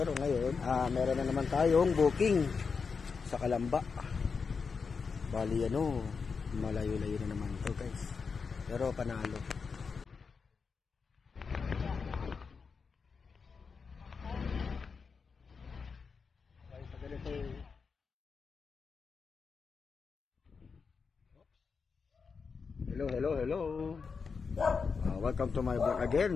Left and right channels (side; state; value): right; quieter; 5.3 dB